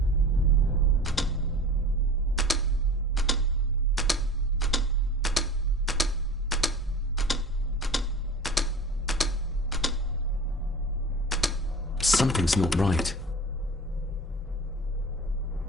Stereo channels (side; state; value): both; normal; correlation 0.37